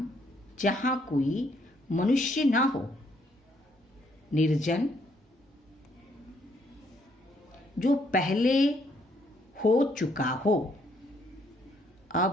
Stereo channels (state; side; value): normal; both; correlation 0.69